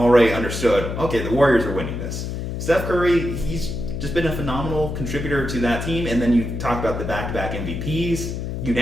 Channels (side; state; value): left; noise; hum, 5 dB below the sound